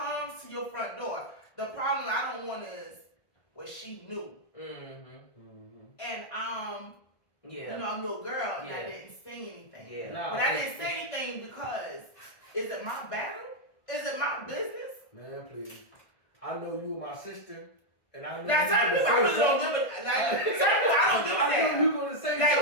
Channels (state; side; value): late; right; 1.5 ms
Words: to your front door. The problem I don't want is what she knew. Mm-hmm. And I'm a little girl and I didn't say anything. Yeah. But I didn't say anything because, is it my battle? Is it my business? Man, please. I know you and my sister. And I know now, certain people, I don't give a damn. I know you're going to say